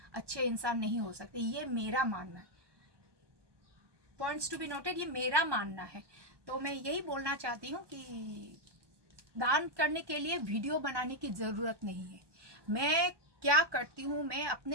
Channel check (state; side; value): late; left; 1.2 ms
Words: अच्छे इंसान नहीं हो सकते, ये मेरा मानना है। पॉइंट्स टू बी नोटेड, ये मेरा मानना है। तो मैं यही बोलना चाहती हूँ कि दान करने के लिए वीडियो बनाने की ज़रूरत नहीं है। मैं क्या करती हूँ, मैं